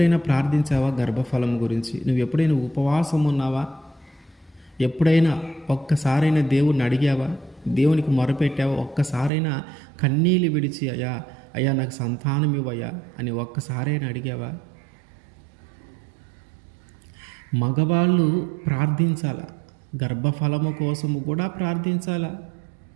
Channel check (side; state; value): left; drops out; at 9.3 s